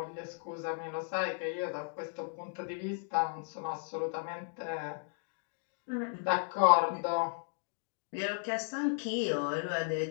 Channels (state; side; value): silent; right; digital silence